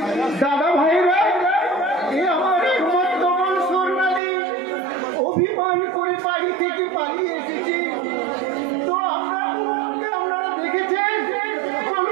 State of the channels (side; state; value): left; drops out; at 4.2 s